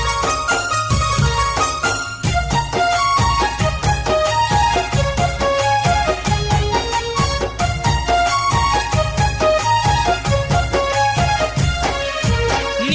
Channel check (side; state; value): both; identical; correlation 1.00